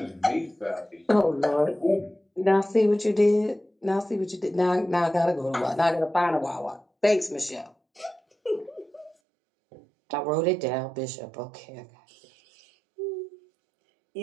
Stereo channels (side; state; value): left; drops out; at 9.2 s